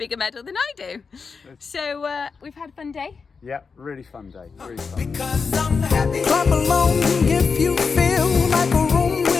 medal than I do. So we've had a fun day. Yeah, really fun day. Really fun. Because I'm happy. Clap along if you feel like a room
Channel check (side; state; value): right; quieter; 5.2 dB